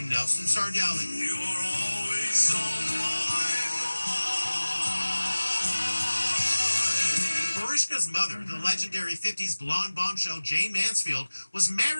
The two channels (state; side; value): inverted; both; correlation -1.00